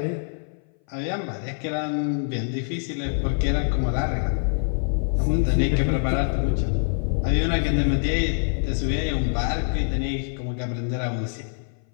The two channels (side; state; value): right; silent; 58 dB below the other